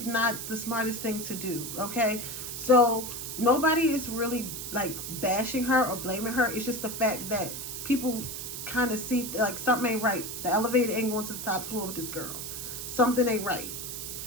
not the smartest thing to do. Okay, so nobody is really like bashing her or blaming her. It's just the fact that people kind of see like something ain't right. The elevator ain't going to the top floor with this girl. Something ain't right.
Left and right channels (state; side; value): noise; right; hiss, 7 dB below the sound